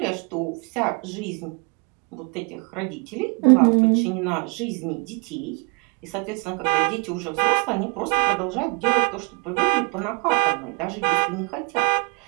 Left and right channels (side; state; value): left; quieter; 33.5 dB